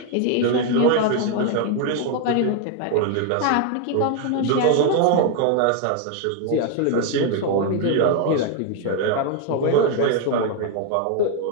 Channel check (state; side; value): different; both; correlation 0.01